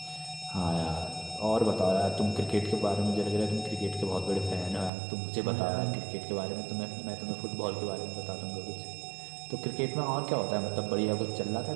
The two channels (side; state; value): left; drops out; at 4.9 s